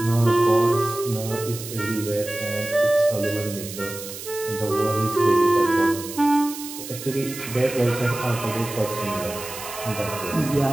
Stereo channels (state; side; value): noise; right; hiss, 11 dB below the sound